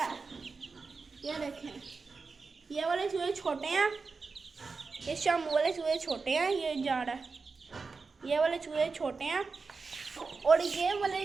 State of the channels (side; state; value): left; quieter; 4.5 dB